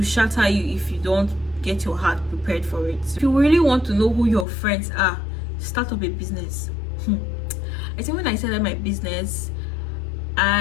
shatter you if you don't get your heart prepared for it. If you really want to know who your friends are, start up a business. I think when I started my business,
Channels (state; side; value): drops out; right; at 4.5 s